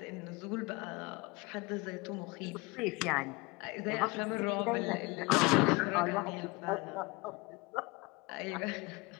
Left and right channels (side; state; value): right; quieter; 25.6 dB